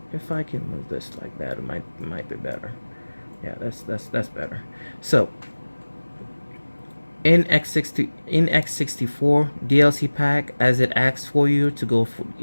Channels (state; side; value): inverted; both; correlation -1.00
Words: If I can move this like that, it might be better. Yeah, that's better. So in x64 DLC pack, as it asks for you to go